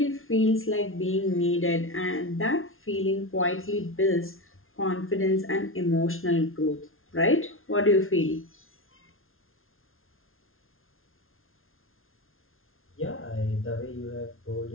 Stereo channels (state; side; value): late; right; 0.61 ms